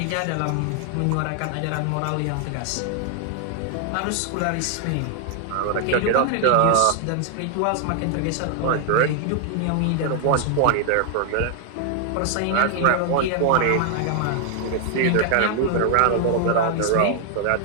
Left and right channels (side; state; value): both; different; correlation 0.00